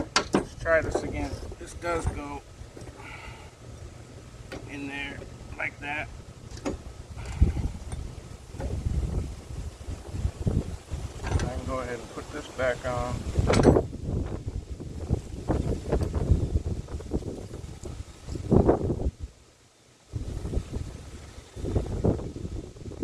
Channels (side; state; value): both; identical; correlation 1.00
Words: Let's try this again. This does go in there like that. I can go ahead and put this back on.